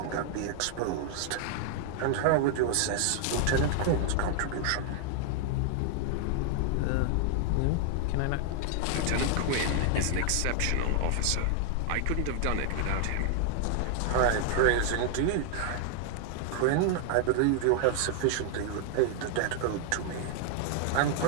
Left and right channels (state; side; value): different; both; correlation 0.00